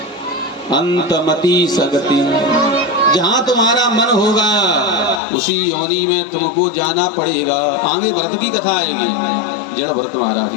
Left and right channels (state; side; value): drops out; right; at 5.2 s